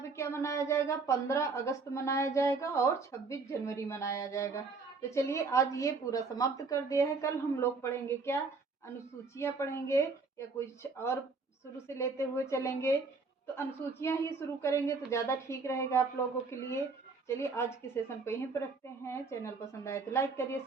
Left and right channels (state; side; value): quieter; left; 4.3 dB